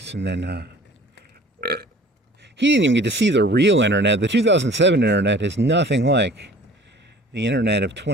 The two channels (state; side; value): normal; both; correlation 0.48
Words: and then he didn't even get to see the real internet. The 2007 internet is nothing like the internet of